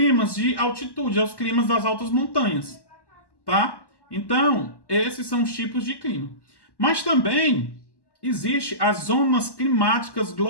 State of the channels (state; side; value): late; right; 1.1 ms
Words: de altitude, os climas das altas montanhas, tá? Então, esses são os tipos de clima. Mas também existe as zonas climáticas